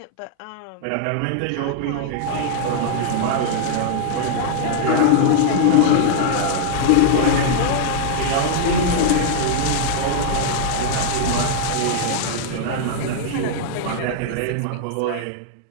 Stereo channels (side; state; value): both; different; correlation -0.01